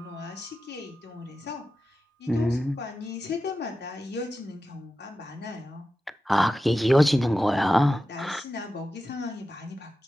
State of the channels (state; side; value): normal; both; correlation 0.92